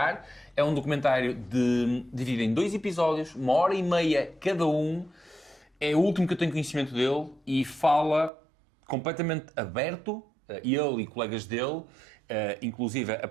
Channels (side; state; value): left; drops out; at 8.3 s